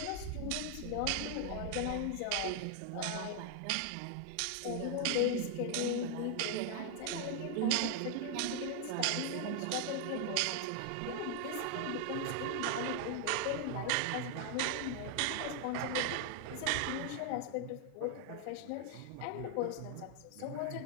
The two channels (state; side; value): different; both; correlation 0.00